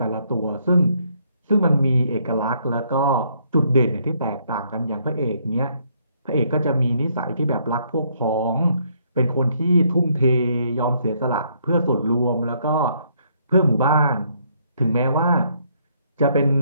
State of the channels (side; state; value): both; inverted; correlation -0.69